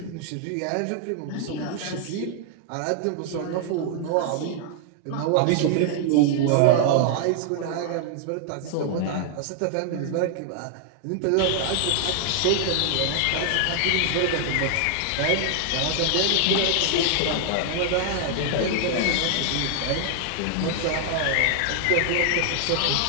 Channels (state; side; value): different; both; correlation 0.00